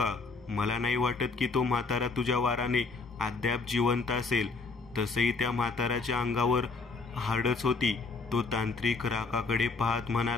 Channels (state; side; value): quieter; right; 4.1 dB